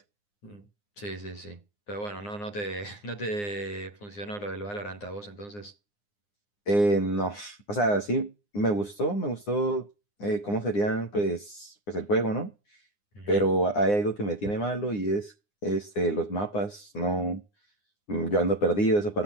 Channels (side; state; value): right; late; 9.8 ms